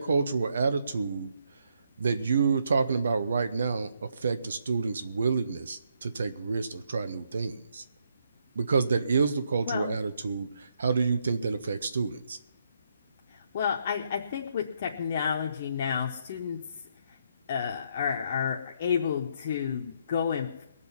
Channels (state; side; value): inverted; both; correlation -0.75